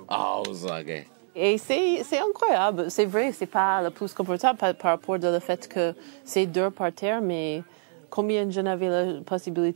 Ah, ok. Et c'est incroyable. C'est vrai, c'est pas le plus confortable par rapport au fait que c'est dur par terre, mais combien de gens avaient la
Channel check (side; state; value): left; silent; digital silence